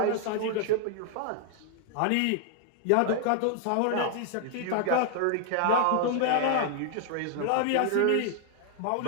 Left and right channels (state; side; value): different; both; correlation 0.00